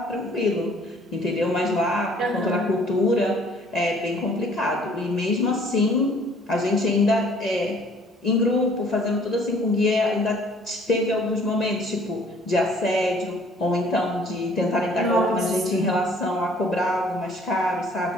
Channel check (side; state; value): both; normal; correlation 0.57